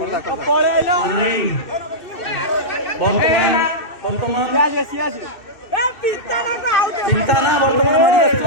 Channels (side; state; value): right; late; 2.6 ms